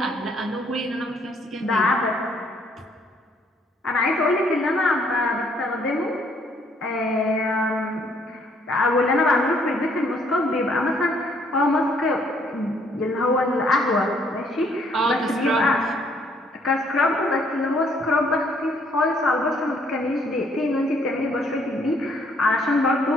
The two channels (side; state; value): both; normal; correlation 0.66